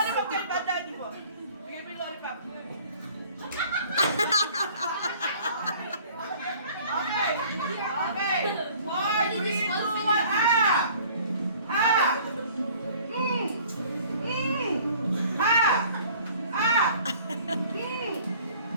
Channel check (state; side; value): inverted; both; correlation -0.52